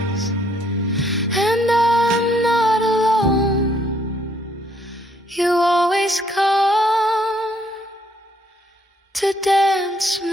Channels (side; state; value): both; normal; correlation 0.68